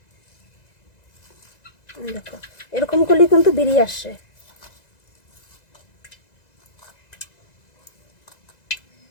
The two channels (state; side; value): late; right; 1.9 ms